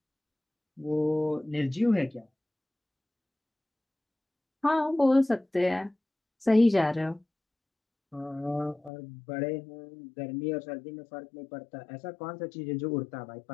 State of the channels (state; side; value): drops out; right; at 8.9 s